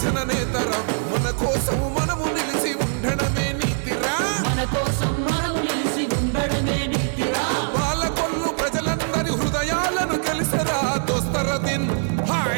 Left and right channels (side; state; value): left; silent; digital silence